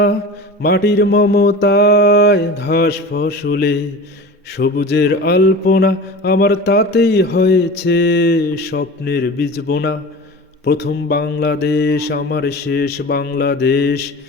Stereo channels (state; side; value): normal; both; correlation 0.34